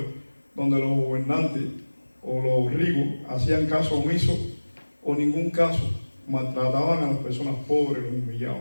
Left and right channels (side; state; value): both; inverted; correlation -1.00